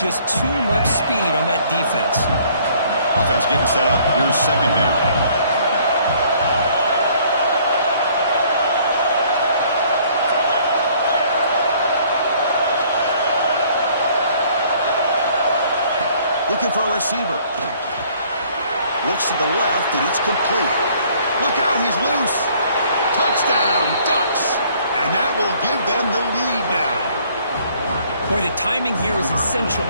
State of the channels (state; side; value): inverted; both; correlation -0.60